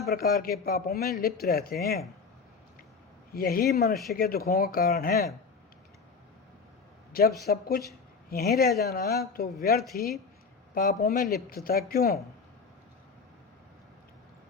प्रकार के पापों में लिप्त रहते हैं। यही मनुष्य के दुखों का कारण है। जब सब कुछ यहीं रह जाना तो व्यर्थ ही पापों में लिप्तता क्यों?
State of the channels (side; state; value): right; quieter; 5.0 dB